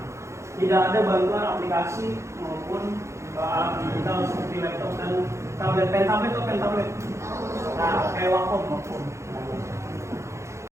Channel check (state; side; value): late; left; 0.14 ms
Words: Tidak ada bantuan aplikasi maupun alat digital seperti laptop dan tablet, pen tablet. Nah, kayak Wacom.